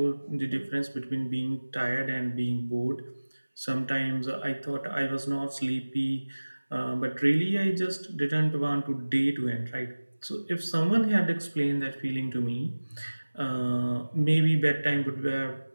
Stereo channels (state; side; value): inverted; both; correlation -1.00